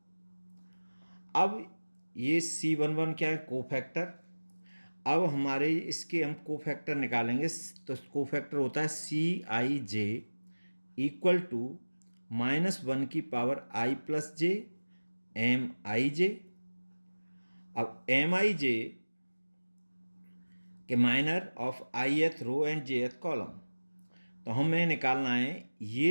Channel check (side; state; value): both; inverted; correlation -1.00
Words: अब ये C11 क्या है, कोफैक्टर। अब हमारे इसके हम कोफैक्टर निकालेंगे, तो कोफैक्टर होता है CIJ इक्वल टू -1 की power I plus J MIJ। अब MIJ के minor of ith row and jth column, तो हमें निकालना है